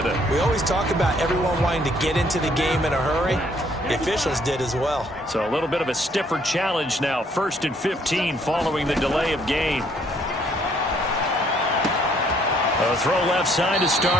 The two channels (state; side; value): normal; both; correlation 0.65